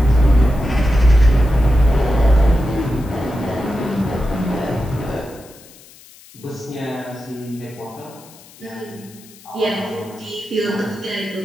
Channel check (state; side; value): noise; left; hiss, 23 dB below the sound